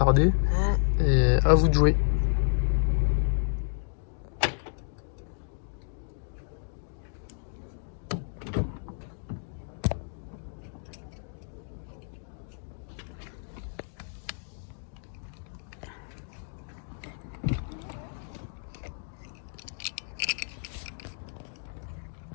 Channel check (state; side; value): silent; right; digital silence